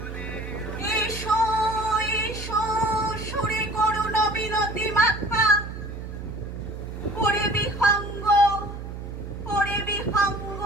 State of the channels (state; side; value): noise; right; hum, 9 dB below the sound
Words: এসো এসো সুরে করুণ বিনতি মাথা, ওরে বিহঙ্গ, ওরে বিহঙ্গ